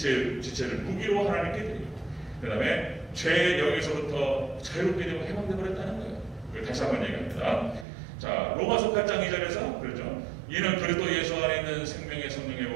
무기로 하나님께 드리고 그 다음에 죄의 영역에서부터 자유롭게 되고 해방되어 버렸다는 거예요. 그걸 다시 한번 얘기합니다. 자, 로마서 8장 2절에서 그렇죠. 이는 그리스도 예수 안에 있는 생명의 성령의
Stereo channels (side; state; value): left; drops out; at 7.9 s